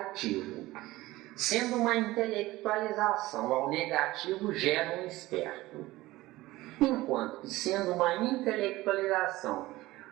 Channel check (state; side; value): quieter; left; 18.3 dB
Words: Sendo uma intelectualização ao negativo, gera um esperto. Enquanto que sendo uma intelectualização